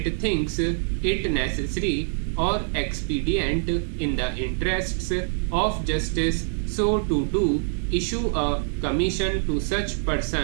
thinks it necessary or expedient in the interests of justice so to do, issue a commission to such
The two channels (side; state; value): left; silent; digital silence